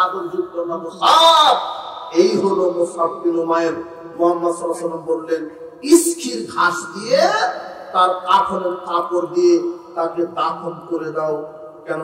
যুক্ত না মুসাব? এই হলো মুসাব বিন উমাইর। মুহাম্মদ সাল্লাল্লাহু আলাইহি ওয়াসাল্লাম বললেন, ইসখির ঘাস দিয়ে তার কাফনের কাপড় দিয়ে তাকে দাফন করে দাও,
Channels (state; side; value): identical; both; correlation 1.00